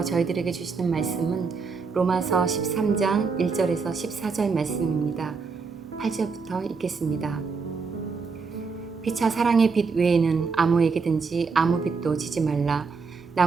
저희들에게 주시는 말씀은 로마서 13장 1절에서 14절 말씀입니다. 8절부터 읽겠습니다. 피차 사랑의 빛 외에는 아무에게든지 아무 빛도 지지 말라.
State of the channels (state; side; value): quieter; left; 4.9 dB